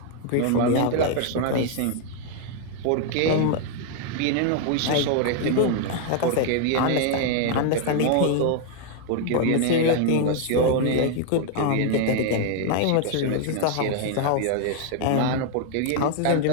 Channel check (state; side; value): different; both; correlation 0.00